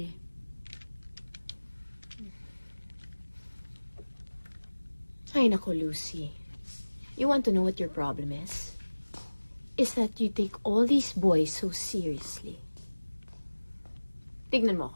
eh. Ay, nako, Lucy. You want to know what your problem is? Is that you take all these boys so seriously. Tignan mo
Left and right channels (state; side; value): inverted; both; correlation -1.00